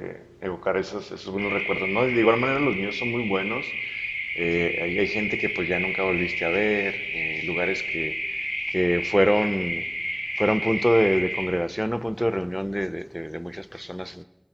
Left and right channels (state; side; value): identical; both; correlation 1.00